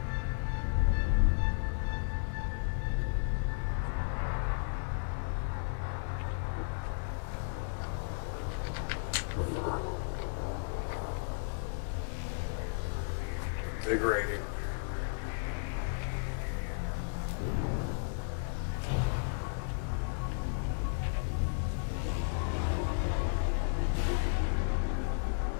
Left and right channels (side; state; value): right; silent; digital silence